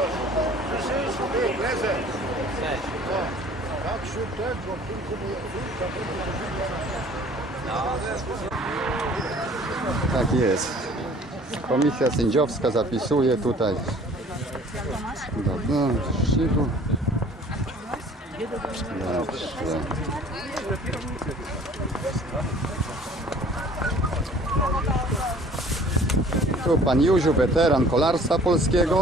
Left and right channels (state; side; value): normal; both; correlation 0.51